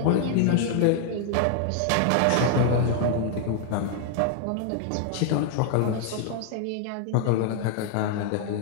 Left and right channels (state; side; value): different; both; correlation 0.00